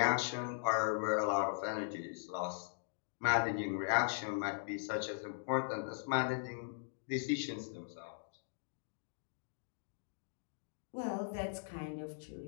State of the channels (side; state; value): right; silent; digital silence